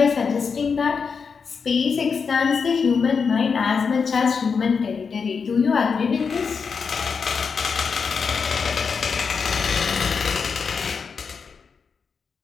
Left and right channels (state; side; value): quieter; right; 5.7 dB